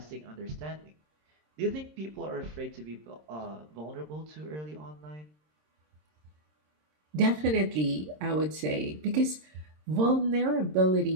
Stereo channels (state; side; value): late; left; 26 ms